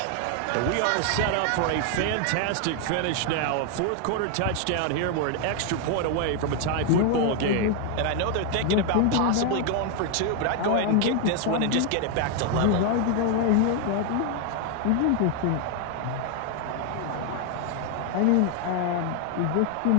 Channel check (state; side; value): different; both; correlation 0.00